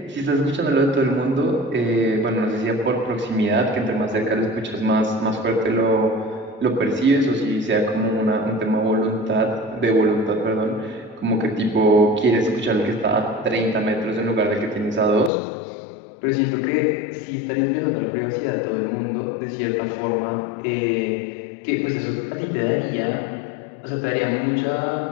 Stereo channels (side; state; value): right; drops out; at 15.3 s